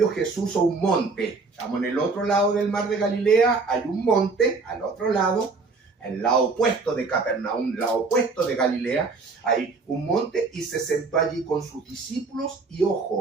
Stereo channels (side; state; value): left; quieter; 4.1 dB